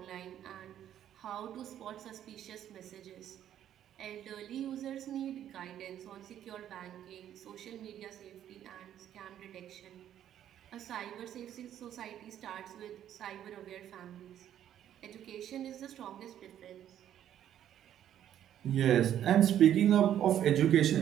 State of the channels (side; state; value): left; quieter; 10.8 dB